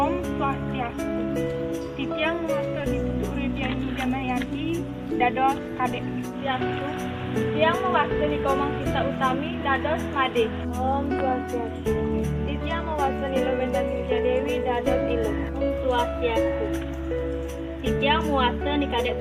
Swastiastu. Titiang Master Ditutup Ridiani Damayanti dados Kadek Swastiastu. Titiang mewasani Komang Sita Utami dados Made. Om Swastiastu. Titiang mewasani Lewenda Silja Dewi dados Ilu. Om Swastiastu. Titiang mewasani Kadek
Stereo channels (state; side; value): identical; both; correlation 1.00